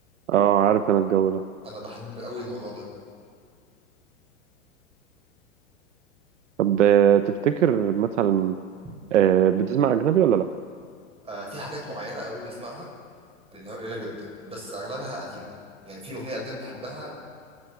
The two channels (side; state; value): left; quieter; 8.7 dB